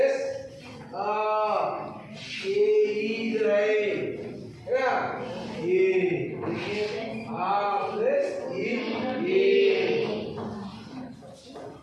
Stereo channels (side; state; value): both; identical; correlation 1.00